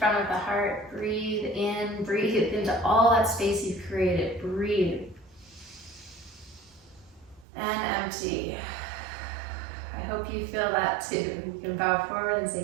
of the heart. Breathe in, breathe into all that space you've created. Breathe. And empty. I hope you feel that too. You can bow forward and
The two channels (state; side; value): drops out; left; at 7.5 s